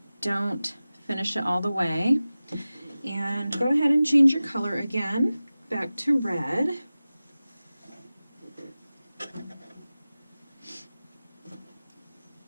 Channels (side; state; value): both; inverted; correlation -0.96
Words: don't finish it all the way, and go ahead and change your color again back to red.